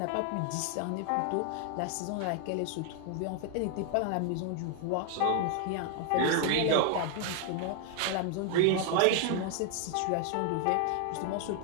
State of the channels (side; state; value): both; different; correlation 0.00